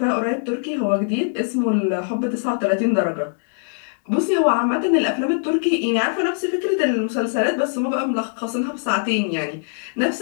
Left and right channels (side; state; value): right; silent; digital silence